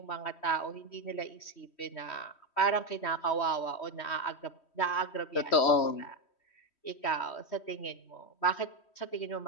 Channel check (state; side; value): late; right; 3.1 ms